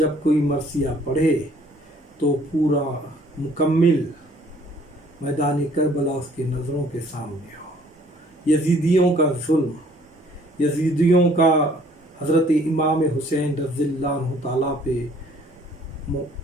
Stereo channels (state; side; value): normal; both; correlation 0.59